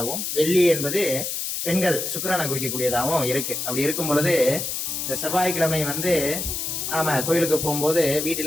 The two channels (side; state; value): left; noise; hiss, 3 dB below the sound